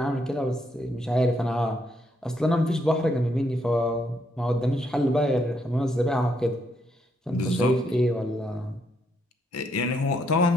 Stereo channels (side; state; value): both; normal; correlation 0.75